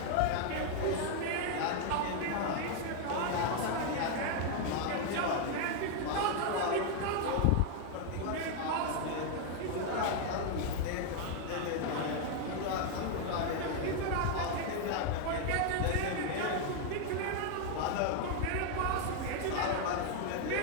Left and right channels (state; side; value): different; both; correlation 0.00